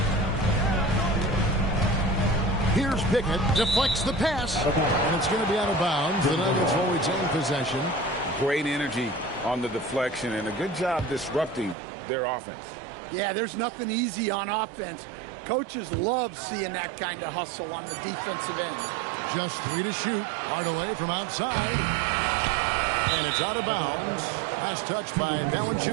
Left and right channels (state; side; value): drops out; left; at 11.8 s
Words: Here's Pickett, deflects the pass, and it's going to be out of bounds. The Nuggets will retain possession. Great energy on the deflection, and a good job disrupting their offense. Yeah, there's nothing easy on offense. Coaches love seeing that kind of hustle on the defensive end. Just 3 to shoot. Hardaway from outside. And it's out of bounds. Last touch by